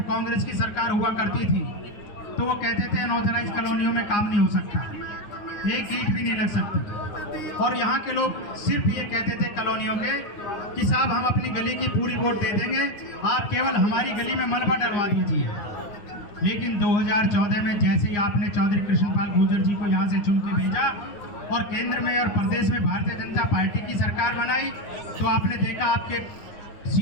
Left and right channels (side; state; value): right; late; 9.7 ms